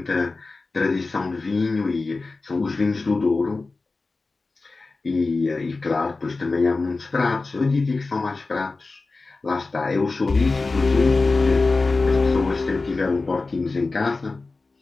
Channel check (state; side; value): quieter; right; 3.7 dB